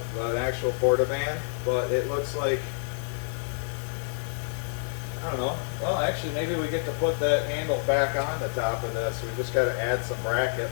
an actual portaband, but it looks like, I don't know. Well, actually, maybe we get to put that handle back on the top of this. We just got to add some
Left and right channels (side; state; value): right; silent; digital silence